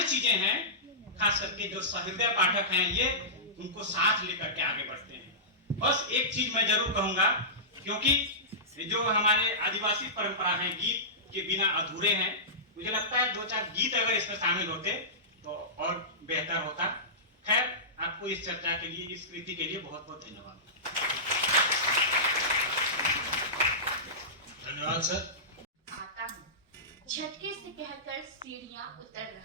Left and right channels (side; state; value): both; normal; correlation -0.19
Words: चीजें हैं। खास करके जो सहृदय पाठक हैं ये उनको साथ लेकर के आगे बढ़ते हैं। बस एक चीज मैं जरूर कहूंगा, क्योंकि जो हमारे आदिवासी परंपरा है, गीत के बिना अधूरे हैं। मुझे लगता है 2-4 गीत अगर इसमें शामिल होते तो और बेहतर होता। खैर, आपको इस चर्चा के लिए, इस कृति के लिए बहुत बहुत धन्यवाद। धन्यवाद सर। आता हूँ, झटके से कहकर सीढ़ियां उतर